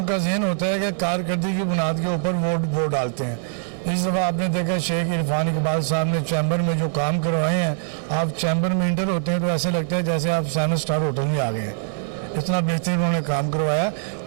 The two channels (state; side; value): silent; left; digital silence